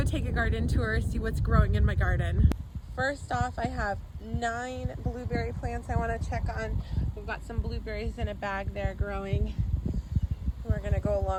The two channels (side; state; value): both; identical; correlation 1.00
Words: take a garden tour, see what's growing in my garden. First off, I have 9 blueberry plants I want to check on. We've got some blueberries in a bag there growing. We're going to go